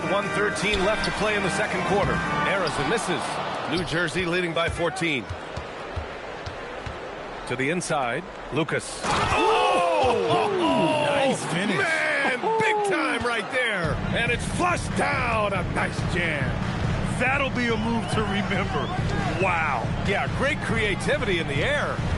1:13 left to play in the second quarter. Harrison misses. New Jersey leading by 14. To the inside, Lucas. Oh! Nice finish. Man, big time right there. And it's flushed down. A nice jam. That'll be a move to remember. Wow. Yeah, great creativity in the air.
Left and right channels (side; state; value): both; identical; correlation 1.00